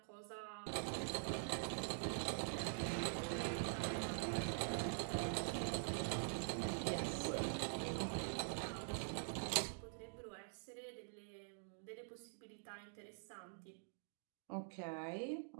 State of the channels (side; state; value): left; silent; digital silence